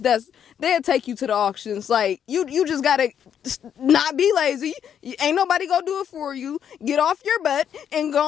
they'll take you to the auctions. Like you just gotta not be lazy. Ain't nobody gonna do it for you. Get off your butt and go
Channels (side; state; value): right; quieter; 8.8 dB